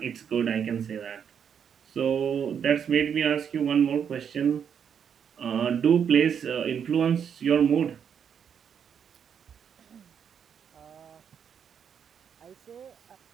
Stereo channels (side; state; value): left; quieter; 7.7 dB